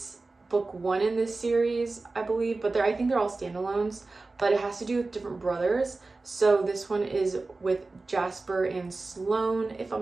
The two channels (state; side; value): quieter; left; 3.5 dB